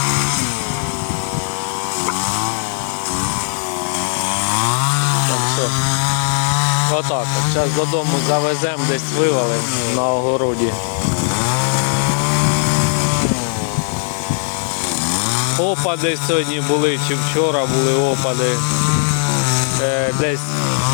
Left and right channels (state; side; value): silent; right; 68 dB below the other